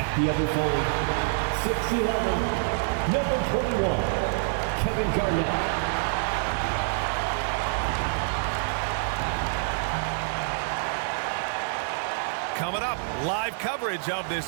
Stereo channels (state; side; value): silent; left; digital silence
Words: The other forward, 6'11", number 21, Kevin Garnett. Coming up, live coverage of